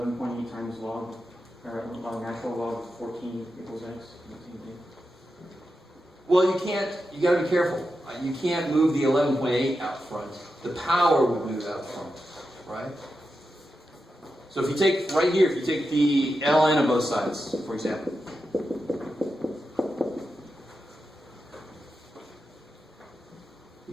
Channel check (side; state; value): both; normal; correlation 0.89